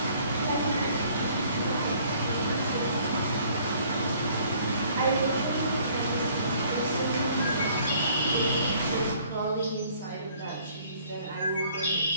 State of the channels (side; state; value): both; inverted; correlation -0.59